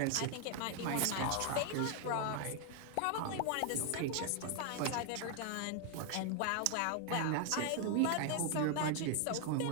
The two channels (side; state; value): both; different; correlation 0.00